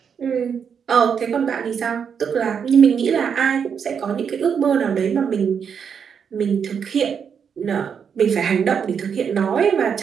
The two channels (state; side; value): quieter; left; 7.1 dB